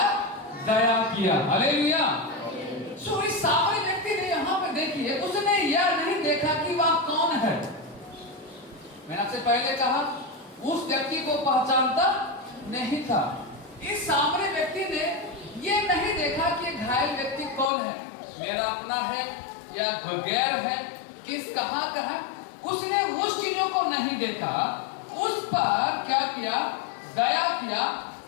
दया किया। हालेलुया। सो इस सामने व्यक्ति ने यहाँ पे देखिए, उसने यह नहीं देखा कि वह कौन है। मैंने आपसे पहले कहा उस व्यक्ति को पहचानता नहीं था। इस सामने व्यक्ति ने ये नहीं देखा कि घायल व्यक्ति कौन है, मेरा अपना है या गैर है, किस कहाँ का है। उसने उस चीजों को नहीं देखा, उस पर क्या किया? दया किया।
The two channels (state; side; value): drops out; right; at 17.7 s